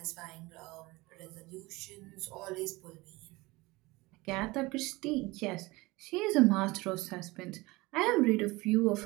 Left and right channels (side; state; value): left; quieter; 22.0 dB